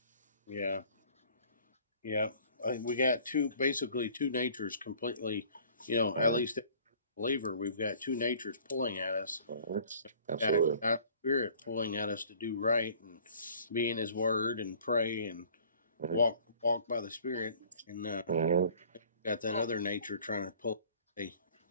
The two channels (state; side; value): inverted; both; correlation -0.52